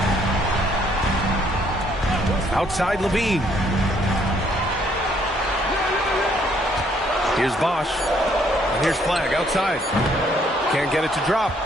Outside Levine. Here's Bosch. And here's Flag outside. Can't get it to drop.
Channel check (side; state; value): both; normal; correlation 0.66